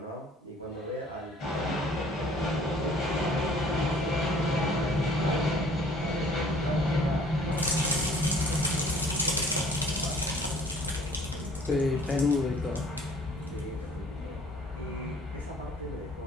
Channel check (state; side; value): normal; both; correlation 0.54